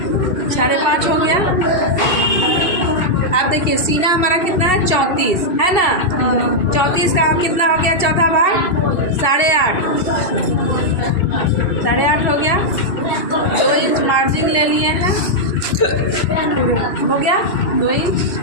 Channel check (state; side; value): late; right; 2.7 ms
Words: हो गया। अब देखिए सीना हमारा कितना है 34 है ना। 34 का अब कितना हो गया, चौथा भाग 8.5 हो गया। 2 इंच मार्जिन ले लिए हैं, हो गया 2 इंच।